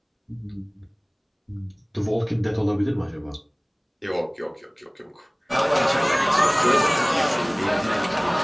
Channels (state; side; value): identical; both; correlation 1.00